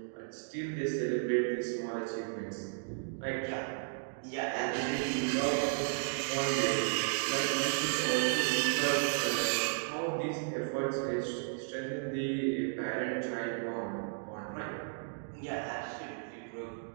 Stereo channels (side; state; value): left; silent; digital silence